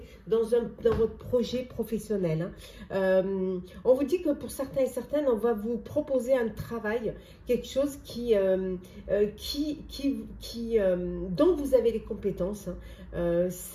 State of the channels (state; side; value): identical; both; correlation 1.00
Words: dans votre projet professionnel. Hein. On vous dit que pour certains et certaines, on va vous proposer un travail, quelque chose dont vous avez les compétences. Hein.